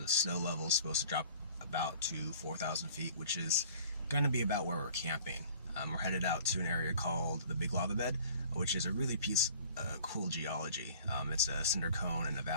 snow level is supposed to drop about to 4,000 feet, which is going to be about where we're camping. We're headed out to an area called the Big Lava Bed, which is a really cool geology. It's a cinder cone in a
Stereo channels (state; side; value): inverted; both; correlation -0.49